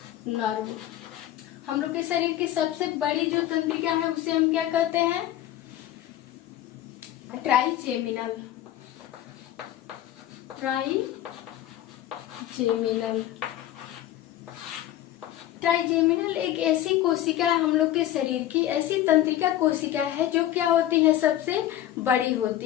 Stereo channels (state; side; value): quieter; right; 12.8 dB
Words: नर्व। हम लोग के शरीर की सबसे बड़ी जो तंत्रिका है उसे हम क्या कहते हैं, ट्राइजेमिनल। ट्राइजेमिनल एक ऐसी कोशिका है हम लोग के शरीर की, ऐसी तंत्रिका कोशिका है जो क्या होती है, सबसे बड़ी